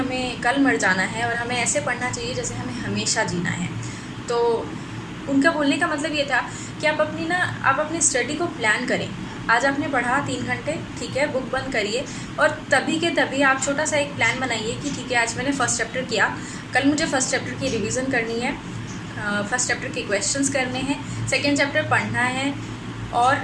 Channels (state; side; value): identical; both; correlation 1.00